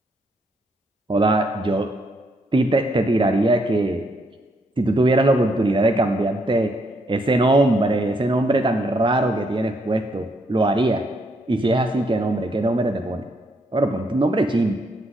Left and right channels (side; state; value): both; normal; correlation 0.73